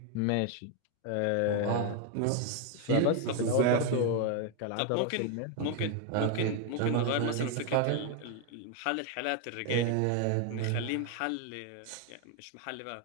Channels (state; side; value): different; both; correlation 0.01